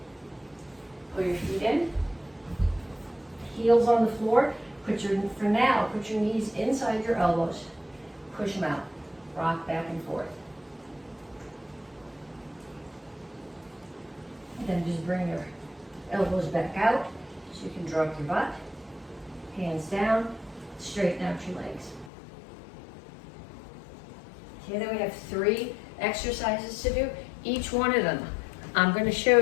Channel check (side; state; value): right; drops out; at 22.1 s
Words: Pull your feet in. Heels on the floor. For now, put your knees inside your elbows. Push them out. Rock back and forth. Then just bring your elbows back out so you can drop your butt. Hands down, straighten out your legs. Okay, then we have 3 exercises to do. Each one of them I'm going to show